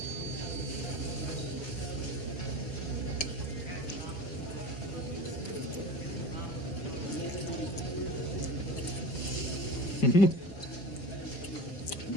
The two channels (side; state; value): right; late; 5.1 ms